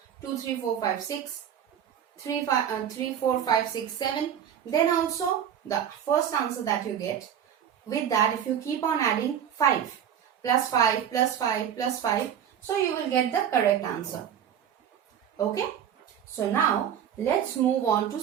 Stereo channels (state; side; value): quieter; left; 9.2 dB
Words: 2, 3, 4, 5, 6, 3, 4, 5, 6, 7, then also the first answer that you get, with that if you keep on adding 5 plus 5 plus 5 plus 5, so you will get the correct answer. Okay? So now let's move on to